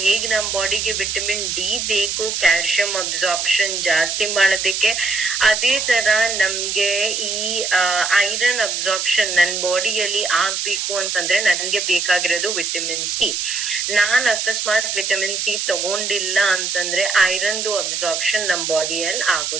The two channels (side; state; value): right; noise; hiss, 2 dB below the sound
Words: ಹೇಗ್ ನಮ್ ಬಾಡಿಗೆ ವಿಟಮಿನ್ ಡಿ ಬೇಕು ಕ್ಯಾಲ್ಸಿಯಂ ಅಬ್ಸಾರ್ಪ್ಷನ್ ಜಾಸ್ತಿ ಮಾಡೋದಕ್ಕೆ, ಅದೇ ತರ ನಮ್ಗೆ ಈ ಐರನ್ ಅಬ್ಸಾರ್ಪ್ಷನ್ ನನ್ ಬಾಡಿಯಲ್ಲಿ ಆಗ್ಬೇಕು ಅಂತಂದ್ರೆ ನನ್ಗೆ ಬೇಕಾಗಿರೋದು ವಿಟಮಿನ್ ಸಿ. ನಾನ್ ಅಕಸ್ಮಾತ್ ವಿಟಮಿನ್ ಸಿ ತಗೊಂಡಿಲ್ಲ ಅಂತಂದ್ರೆ ಐರನ್ದು ಅಬ್ಸಾರ್ಪ್ಷನ್ ನಮ್ ಬಾಡಿಯಲ್ಲಿ